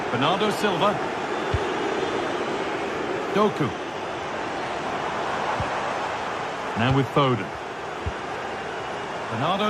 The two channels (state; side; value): identical; both; correlation 1.00